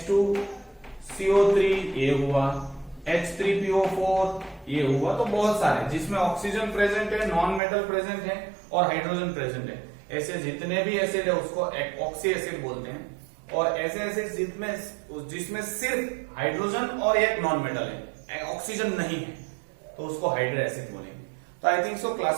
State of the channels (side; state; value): left; drops out; at 7.6 s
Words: ये हुआ, H3PO4 ये हुआ। तो बहुत सारे जिसमें ऑक्सीजन प्रेजेंट है, नॉन मेटल प्रेजेंट है और हाइड्रोजन प्रेजेंट है, ऐसे जितने भी एसिड है उसको ऑक्सी एसिड बोलते हैं। और ऐसे ऐसे जिसमें सिर्फ हाइड्रोजन और एक नॉन मेटल है, ऑक्सीजन नहीं है, तो उसको हाइड्रो एसिड बोलेंगे। तो आई थिंक सो